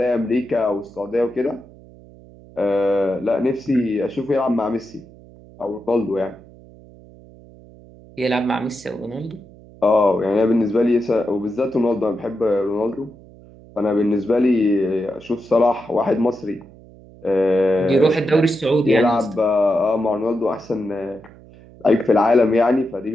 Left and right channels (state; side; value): noise; right; hum, 22 dB below the sound